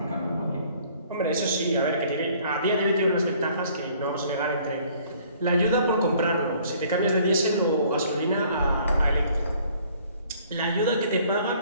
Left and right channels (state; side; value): inverted; both; correlation -0.58